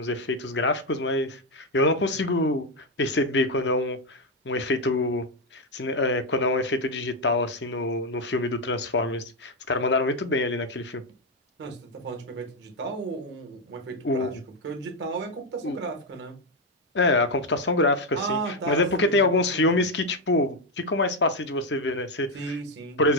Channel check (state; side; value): normal; both; correlation 0.05